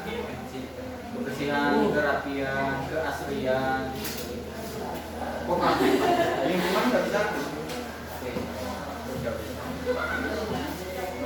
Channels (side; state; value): both; identical; correlation 1.00